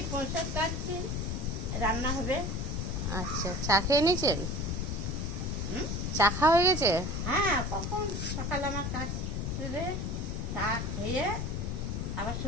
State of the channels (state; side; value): noise; left; rumble, 2 dB below the sound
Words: পয়সা কাটছি, রান্না হবে। আচ্ছা, চা খেয়ে নিয়েছেন? চা খাওয়া হয়ে গেছে? হ্যাঁ, কখন সকালে আমার কাজ করে চা খেয়ে আবার